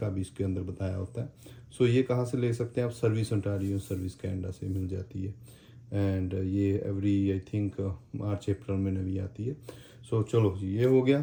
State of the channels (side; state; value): both; identical; correlation 1.00